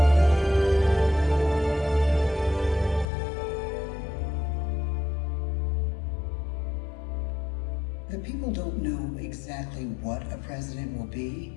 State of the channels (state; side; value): drops out; right; at 3.1 s